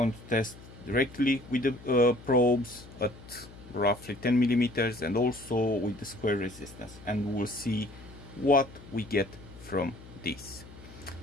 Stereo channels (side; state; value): left; noise; hum, 18 dB below the sound